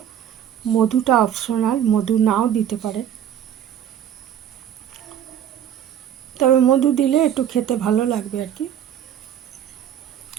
মধুটা অপশনাল, মধু নাও দিতে পারে, তবে মধু দিলে একটু খেতে ভালো লাগবে আর কি।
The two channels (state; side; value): quieter; left; 9.9 dB